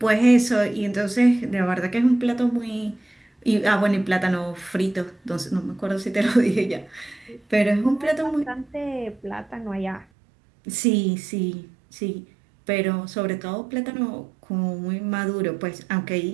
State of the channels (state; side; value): drops out; left; at 10.1 s